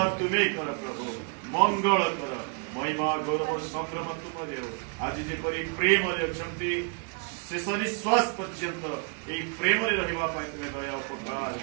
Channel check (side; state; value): left; quieter; 37.3 dB